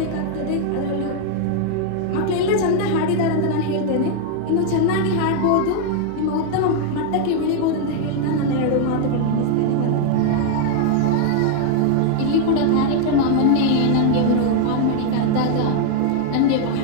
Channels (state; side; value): different; both; correlation 0.00